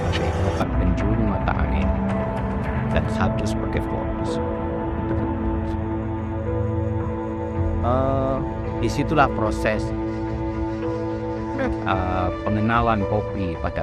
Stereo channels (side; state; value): both; identical; correlation 1.00